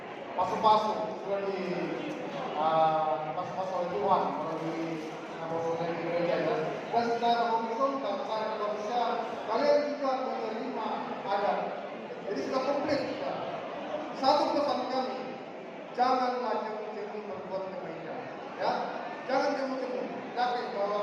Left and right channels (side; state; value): both; identical; correlation 1.00